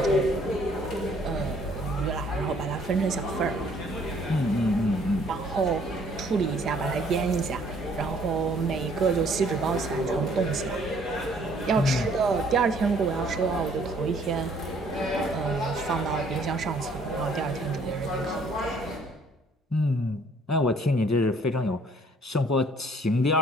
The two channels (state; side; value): normal; both; correlation 0.61